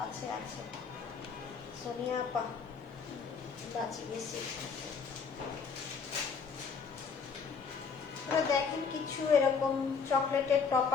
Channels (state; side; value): quieter; right; 5.6 dB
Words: আছে আছে সোনিয়া আপা বাঁচি গেছি। দেখেন কিছু এরকম চকলেটের